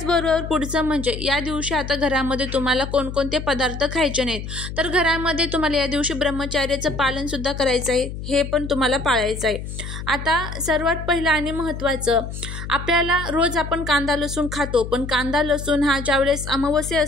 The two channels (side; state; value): left; noise; hum, 8 dB below the sound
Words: पुढचं म्हणजे या दिवशी आता घरामध्ये तुम्हाला कोणकोणते पदार्थ खायचे नाहीत, तर घरामध्ये तुम्हाला या दिवशी ब्रह्मचर्याचं पालन सुद्धा करायचं आहे, हे पण तुम्हाला पाळायचं आहे। आता सर्वात पहिलं आणि महत्त्वाचं, आपल्याला रोज आपण कांदा लसूण खातो, पण कांदा लसूण हा ज्यावेळेस अमावस्या